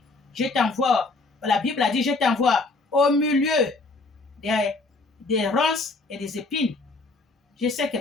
je t'envoie, la Bible a dit, je t'envoie au milieu des ronces et des épines. Je sais que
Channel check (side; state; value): right; quieter; 3.5 dB